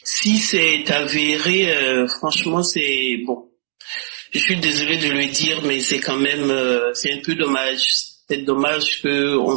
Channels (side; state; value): left; silent; digital silence